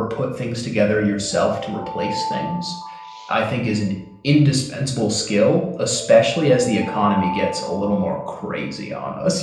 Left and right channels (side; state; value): both; identical; correlation 1.00